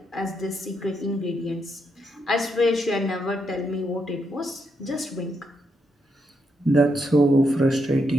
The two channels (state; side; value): normal; both; correlation 0.80